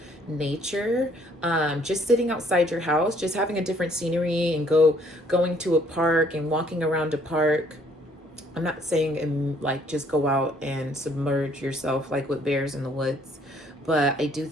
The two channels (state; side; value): normal; both; correlation 0.63